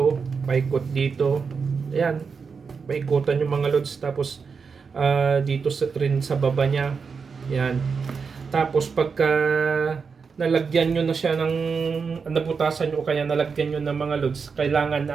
paikot dito. Ayan, paikutan yung mga loads. Tapos dito rin sa baba niya. Ayan. Tapos pagka nalagyan nyo na siya ng nabutasan nyo o kaya nalagyan nyo ng mga loads,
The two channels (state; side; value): quieter; left; 5.5 dB